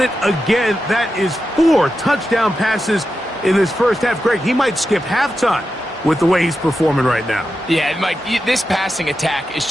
again. That is 4 touchdown passes in this first half. Greg, he might skip halftime with the way he's performing right now. Yeah, Mike, this passing attack is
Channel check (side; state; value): both; normal; correlation 0.89